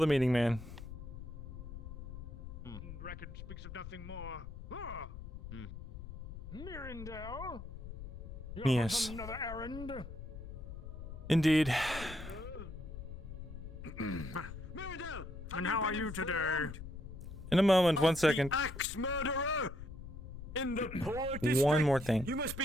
meeting man. Record speaks of nothing more. Ah! Hmm. Myrindal? Yes. On another errand? Indeed. Myrindal! And how are you today? In a moment, 1 second. Axe murderer! In the poor district. One more thing. You must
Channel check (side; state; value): left; noise; rumble, 11 dB below the sound